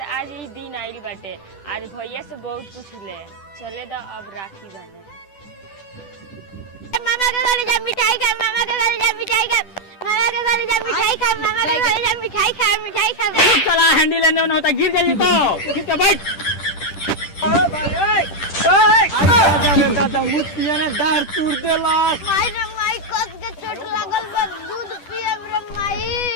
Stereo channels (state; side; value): late; right; 10 ms